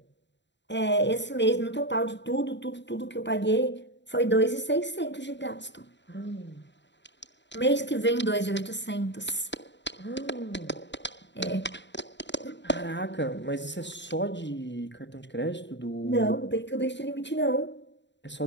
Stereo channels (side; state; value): right; late; 0.52 ms